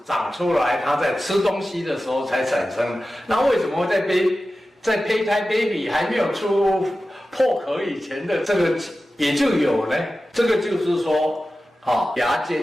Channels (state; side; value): normal; both; correlation 0.94